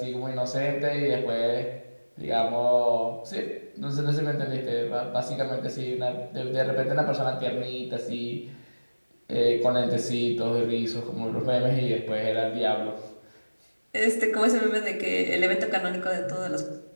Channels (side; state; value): both; inverted; correlation -1.00